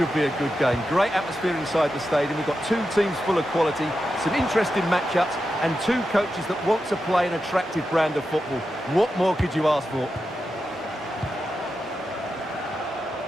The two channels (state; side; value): normal; both; correlation 0.89